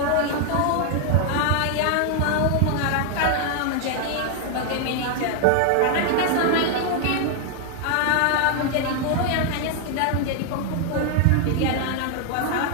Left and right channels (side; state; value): both; different; correlation 0.00